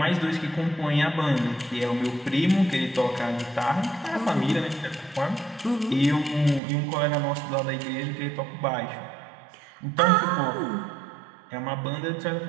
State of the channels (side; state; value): left; drops out; at 6.6 s